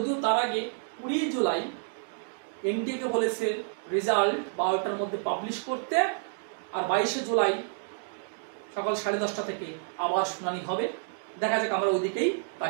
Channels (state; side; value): silent; left; digital silence